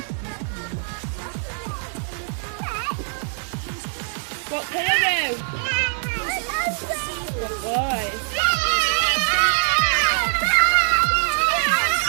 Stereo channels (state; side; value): silent; left; 58 dB below the other